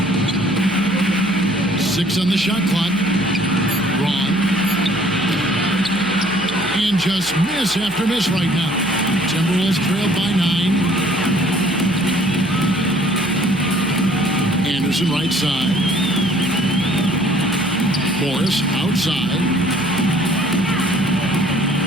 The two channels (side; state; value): right; noise; hum, 21 dB below the sound